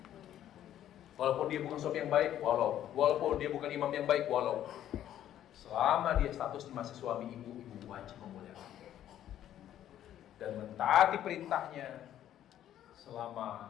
dia bukan suami yang baik, walaupun dia bukan imam yang baik, selama dia statusnya masih suami ibu wajib memuliakan dia dan mentaati perintahnya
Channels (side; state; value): right; quieter; 11.5 dB